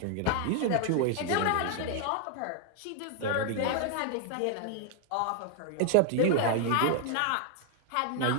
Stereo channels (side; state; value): both; different; correlation 0.00